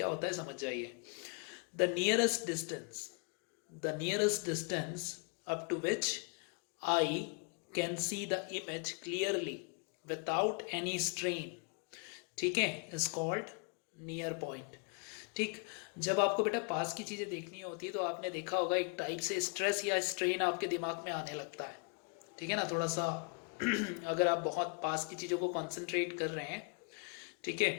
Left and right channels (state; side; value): quieter; right; 35.5 dB